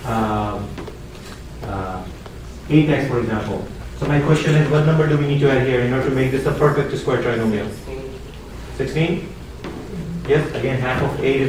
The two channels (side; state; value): both; identical; correlation 1.00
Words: 8x, for example. So my question is, what number do we need to add here in order to make this a perfect square trinomial? 16? Yes, again, half of 8 is